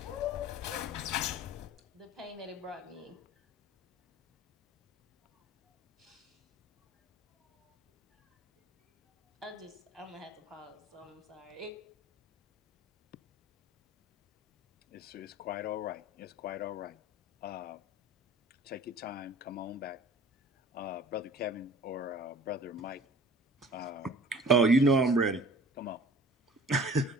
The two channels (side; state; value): both; normal; correlation 0.46